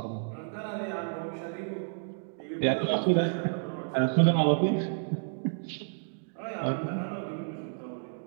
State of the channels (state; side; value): silent; left; digital silence